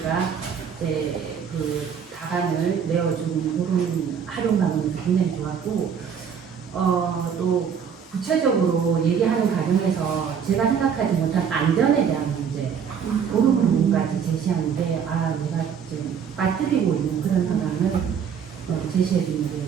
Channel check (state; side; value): quieter; left; 7.2 dB